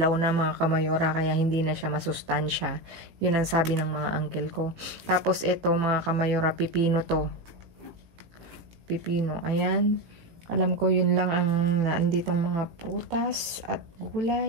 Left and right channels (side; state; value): left; late; 17 ms